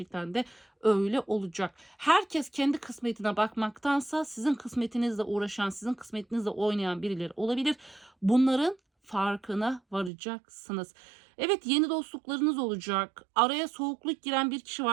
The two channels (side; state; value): left; drops out; at 10.1 s